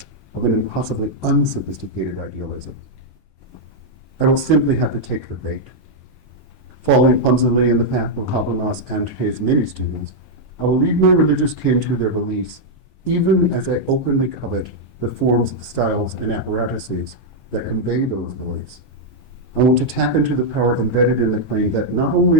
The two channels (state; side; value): normal; both; correlation -0.03